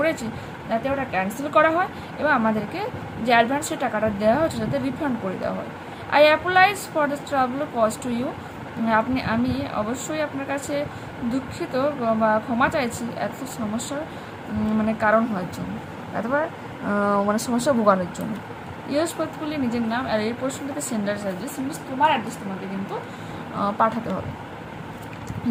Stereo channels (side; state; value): both; identical; correlation 1.00